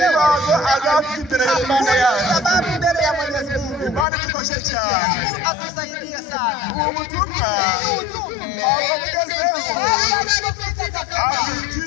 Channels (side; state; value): right; drops out; at 4.0 s